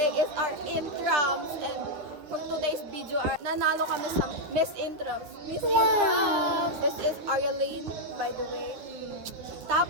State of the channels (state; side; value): late; left; 9.7 ms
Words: is our intrams and for today's video, nanalo kami sa Miss Intrams. Miss Intrams! This is Arialine, by the way.